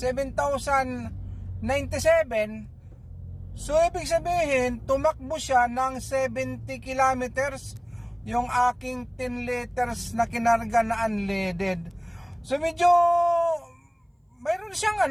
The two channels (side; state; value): both; identical; correlation 1.00